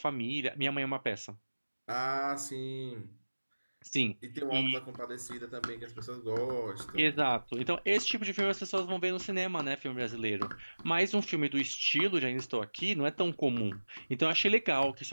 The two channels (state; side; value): inverted; both; correlation -1.00